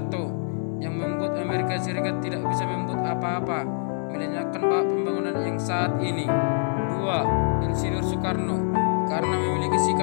yang membuat Amerika Serikat tidak bisa membuat apa-apa, melenyapkan pembangunan yang saat ini. 2. Insinyur Soekarno. Karena memiliki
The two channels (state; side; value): silent; right; 62 dB below the other